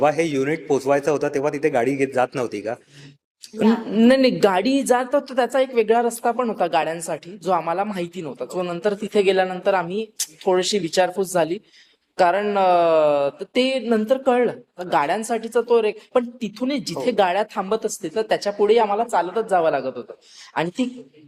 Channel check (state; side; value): identical; both; correlation 1.00